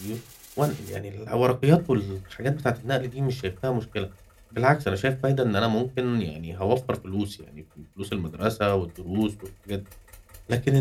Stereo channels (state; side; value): identical; both; correlation 1.00